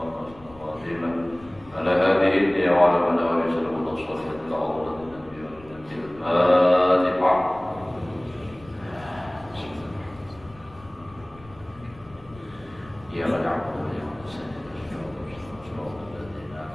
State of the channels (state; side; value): noise; left; rumble, 22 dB below the sound